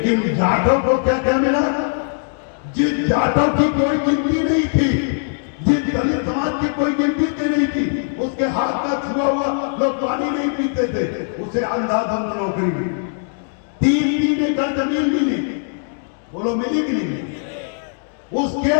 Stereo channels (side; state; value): right; silent; digital silence